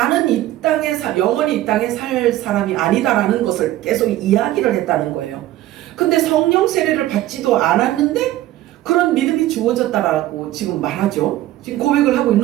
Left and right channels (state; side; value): quieter; left; 14.8 dB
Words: 이 땅에 영원히 이 땅에 살 사람이 아니다라는 것을 계속 이야기를 했다는 거예요. 근데 성령 세례를 받지도 않았는데 그런 믿음이 주어졌다라고 지금 말하죠. 지금 고백을 하고